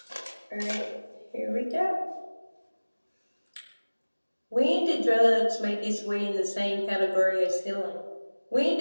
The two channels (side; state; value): both; inverted; correlation -1.00